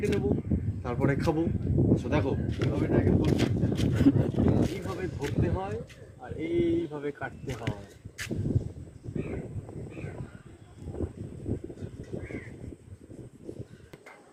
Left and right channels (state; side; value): identical; both; correlation 1.00